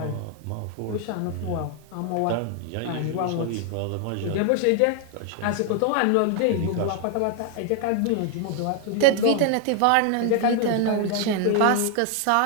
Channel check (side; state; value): both; different; correlation 0.00